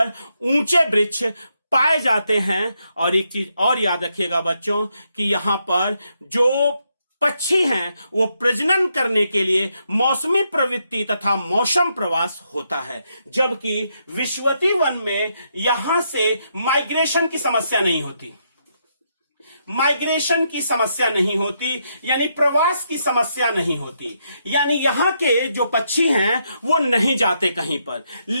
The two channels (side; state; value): both; inverted; correlation -0.79